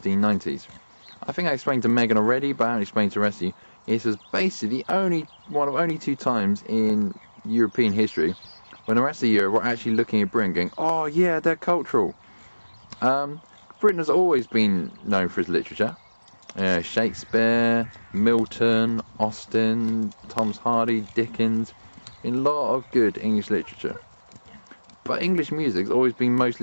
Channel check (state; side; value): inverted; both; correlation -1.00